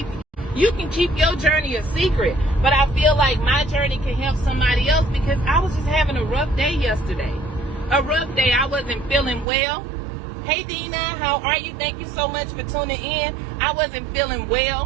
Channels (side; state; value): left; drops out; at 9.5 s